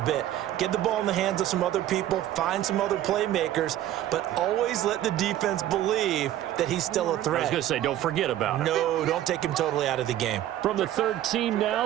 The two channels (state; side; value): quieter; left; 12.8 dB